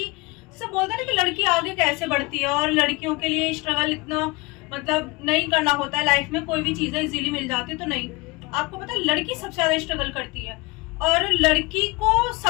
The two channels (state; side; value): quieter; right; 24.6 dB